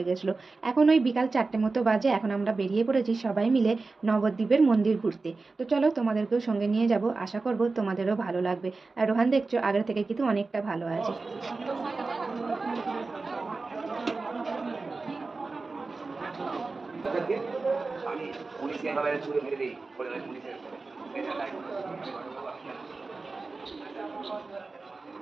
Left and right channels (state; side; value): quieter; left; 3.8 dB